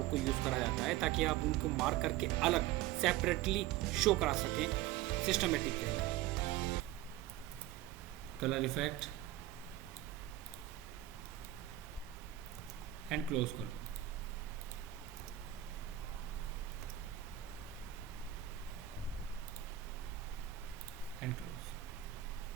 को यूज़ करा जाता है ताकि आप उनको मार्क करके अलग सेपरेटली शो करा सकें systematic way. Colour effect and close कर दो। And close.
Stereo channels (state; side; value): quieter; left; 14.0 dB